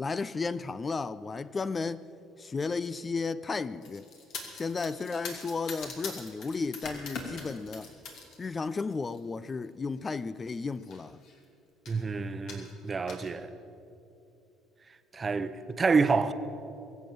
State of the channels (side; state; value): both; normal; correlation 0.84